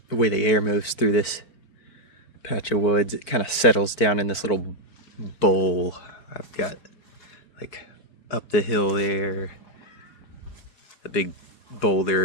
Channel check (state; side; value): late; right; 4.5 ms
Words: the air moves through this patch of woods, it kind of settles down in this little bowl. I've got like up the hill there, the big